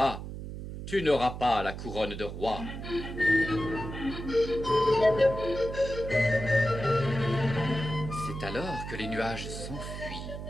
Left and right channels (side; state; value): right; noise; hum, 8 dB below the sound